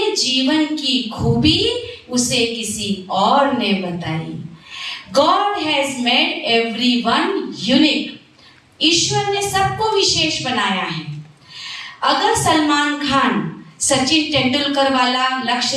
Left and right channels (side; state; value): both; identical; correlation 1.00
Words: जीवन की खूबी उसे किसी और ने बताई। God has made everyone unique. ईश्वर ने सबको विशेष बनाया है। अगर सलमान खान सचिन तेंदुलकर वाला